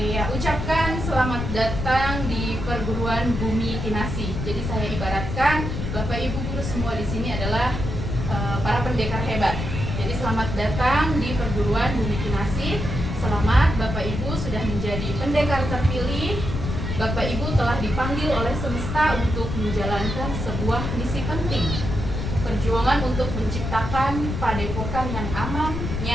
ucapkan selamat datang di perguruan Bumi Kinasi. Jadi saya ibaratkan Bapak Ibu guru semua di sini adalah para pendekar hebat. Jadi selamat datang di perguruan Bumi Kinasi. Selamat Bapak Ibu sudah menjadi pendekar terpilih. Bapak Ibu telah dipanggil oleh semesta untuk menjalankan sebuah misi penting. Perjuangan untuk menciptakan padepokan yang aman,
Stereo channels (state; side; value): noise; left; rumble, 4 dB below the sound